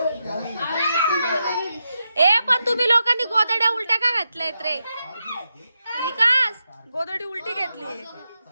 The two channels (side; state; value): both; inverted; correlation -0.86